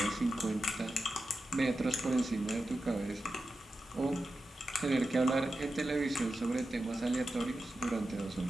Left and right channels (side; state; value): both; normal; correlation 0.91